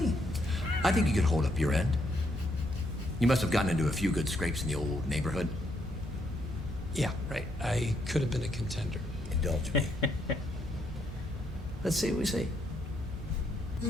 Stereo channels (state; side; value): normal; both; correlation 0.75